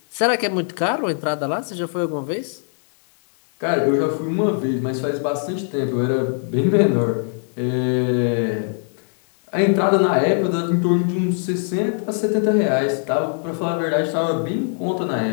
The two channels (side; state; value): right; silent; 65 dB below the other